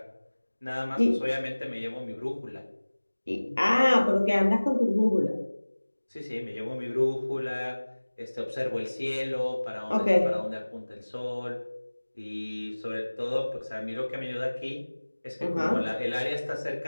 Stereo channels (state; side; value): inverted; both; correlation -1.00